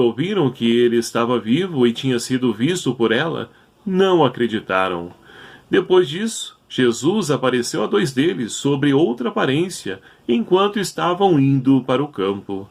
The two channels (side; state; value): both; identical; correlation 1.00